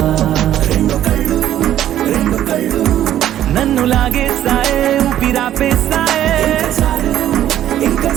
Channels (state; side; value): quieter; left; 11.9 dB